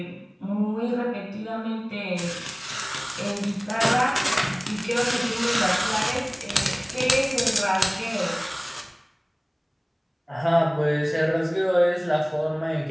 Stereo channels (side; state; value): both; identical; correlation 1.00